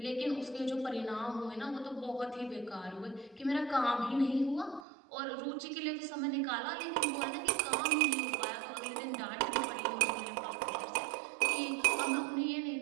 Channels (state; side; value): drops out; left; at 4.9 s